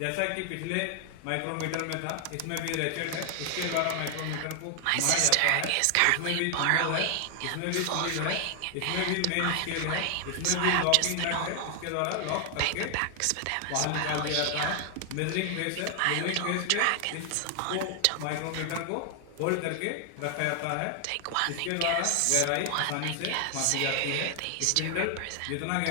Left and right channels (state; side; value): different; both; correlation 0.00